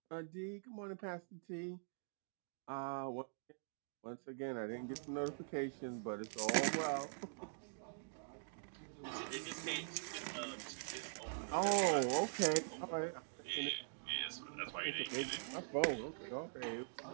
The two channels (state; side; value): silent; left; digital silence